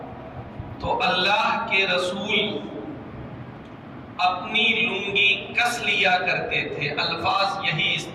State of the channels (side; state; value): both; identical; correlation 1.00